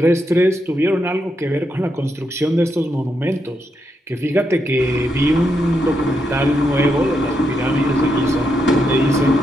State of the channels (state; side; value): normal; both; correlation 0.81